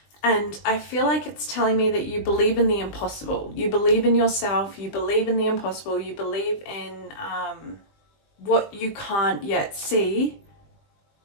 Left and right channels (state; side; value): late; right; 20 ms